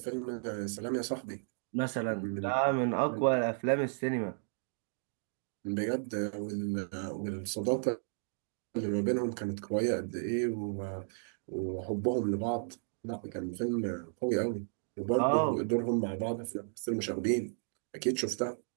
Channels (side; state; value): left; silent; digital silence